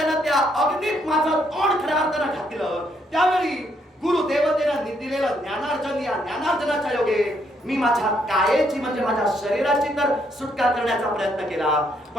त्या अग्नीत माझं तोंड खऱ्या अर्थानं घातलं. त्यावेळी गुरुदेवतेनं दिलेलं ज्ञानार्जन, या ज्ञानार्जनाच्या योगे मी माझ्या कायेची म्हणजे माझ्या शरीराची तर सुटका करण्याचा प्रयत्न केला,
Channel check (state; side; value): normal; both; correlation 0.73